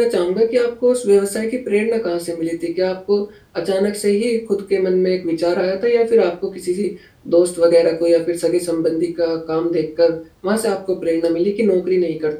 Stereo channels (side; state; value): both; identical; correlation 1.00